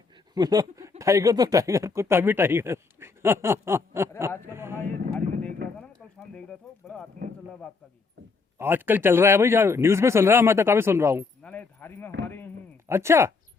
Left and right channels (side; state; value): right; quieter; 4.6 dB